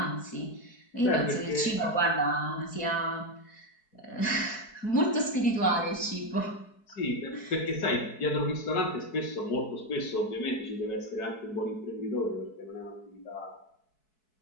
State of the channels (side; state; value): right; late; 4.6 ms